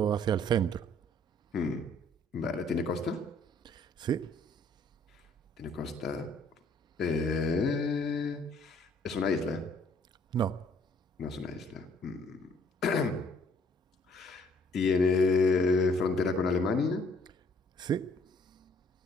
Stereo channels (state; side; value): normal; both; correlation 0.61